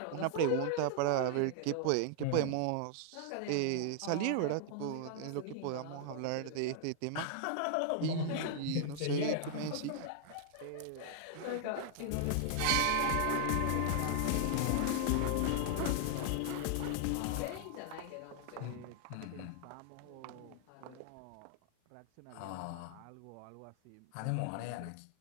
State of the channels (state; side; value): different; both; correlation 0.00